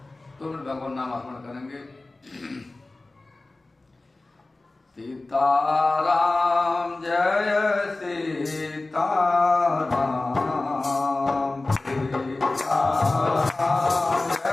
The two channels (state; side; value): quieter; right; 3.1 dB